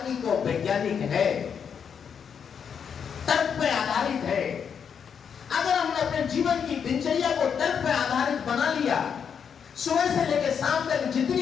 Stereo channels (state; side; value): quieter; right; 7.2 dB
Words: और वैज्ञानिक है, तर्क पे आधारित है। अगर हमने अपने जीवन की दिनचर्या को तर्क पे आधारित बना लिया, सुबह से लेकर शाम तक